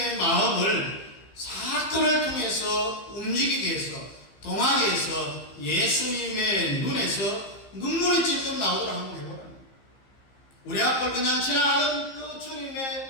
마음을 사건을 통해서 움직이게 해서 동하게 해서 예수님의 눈에서 눈물이 찔끔 나오도록 한번 해보라. 우리 앞을 그냥 지나가는 그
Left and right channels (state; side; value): late; right; 15 ms